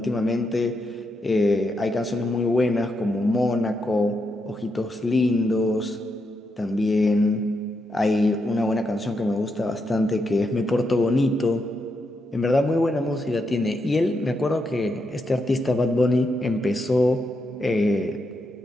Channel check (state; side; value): normal; both; correlation 0.82